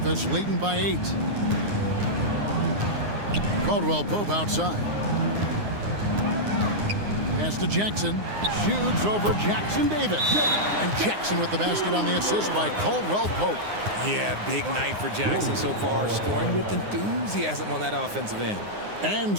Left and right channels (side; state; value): left; late; 9.7 ms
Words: leading by 8. Caldwell-Pope outside. Pass to Jackson. Shoots over Jackson-Davis. And Jackson with the basket on the assist by Caldwell-Pope. Yeah, big night for Jackson so far, scoring with enthusiasm on that offensive end. And